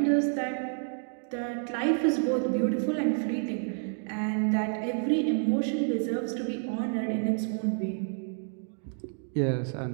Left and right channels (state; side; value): silent; left; 58 dB below the other